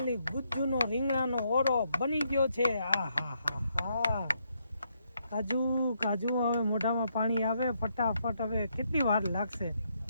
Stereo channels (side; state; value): both; inverted; correlation -0.76